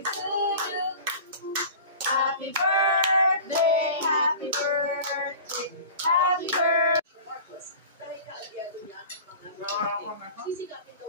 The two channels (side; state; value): both; inverted; correlation -0.38